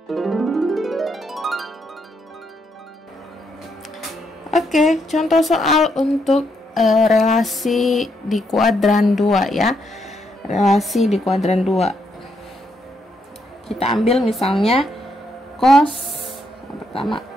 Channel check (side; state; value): both; normal; correlation 0.77